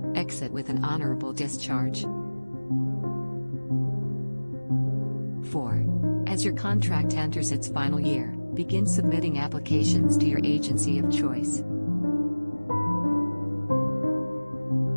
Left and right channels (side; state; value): both; inverted; correlation -1.00